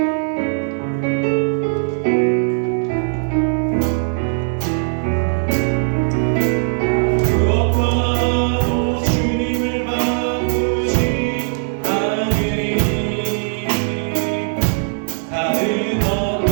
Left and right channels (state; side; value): silent; left; digital silence